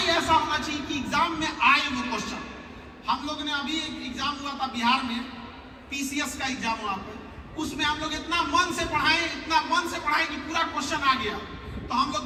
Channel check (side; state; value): both; identical; correlation 1.00